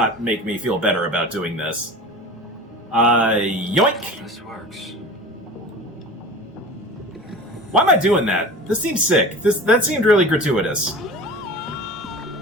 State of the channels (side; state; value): both; normal; correlation 0.36